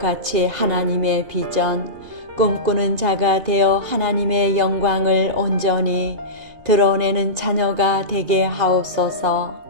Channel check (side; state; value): left; late; 2.5 ms